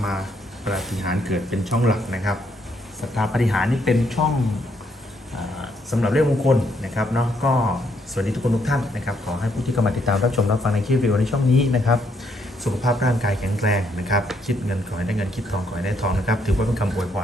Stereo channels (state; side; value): normal; both; correlation 0.72